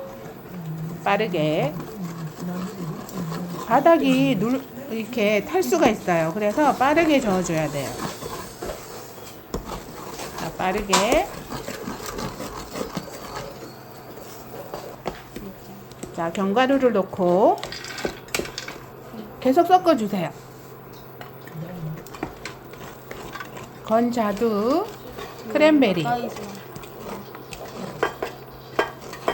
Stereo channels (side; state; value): both; identical; correlation 1.00